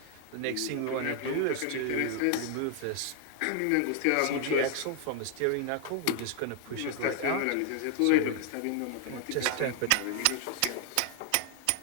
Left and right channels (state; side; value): different; both; correlation 0.00